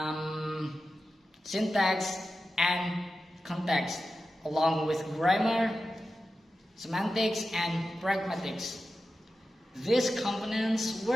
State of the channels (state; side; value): normal; both; correlation 0.92